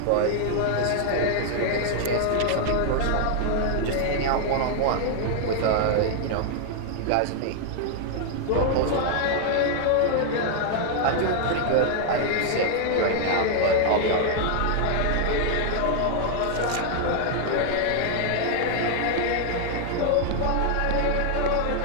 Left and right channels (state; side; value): different; both; correlation 0.00